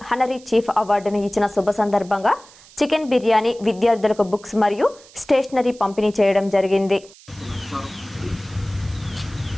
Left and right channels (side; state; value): right; noise; hiss, 23 dB below the sound